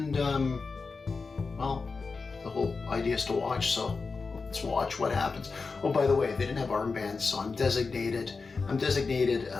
well, the whole idea is to watch, so let's watch what happens. Oh, by the way, they didn't have armbands, so I'm designating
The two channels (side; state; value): right; quieter; 4.4 dB